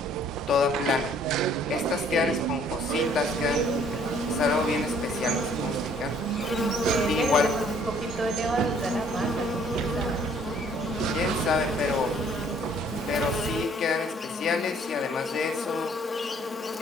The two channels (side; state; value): both; normal; correlation 0.60